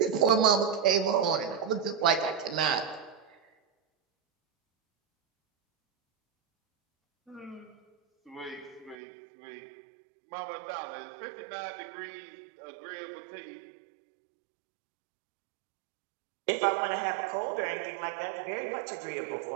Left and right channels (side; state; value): left; drops out; at 9.0 s